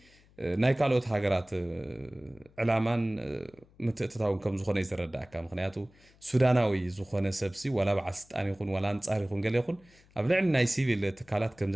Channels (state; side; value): noise; left; hum, 29 dB below the sound